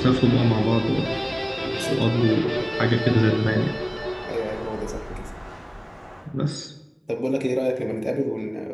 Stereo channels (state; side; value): identical; both; correlation 1.00